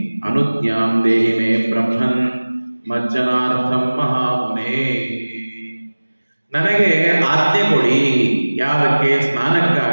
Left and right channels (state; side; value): inverted; both; correlation -1.00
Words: ಅನುಜ್ಞಾಂ ದೇಹಿ ಮೇ ಬ್ರಹ್ಮನ್ ಮಜ್ಜನಾರ್ಥಂ ಮಹಾಮುನೇ, ನನಗೆ ಆಜ್ಞೆ ಕೊಡಿ, ಯಾವಕ್ಕೆ,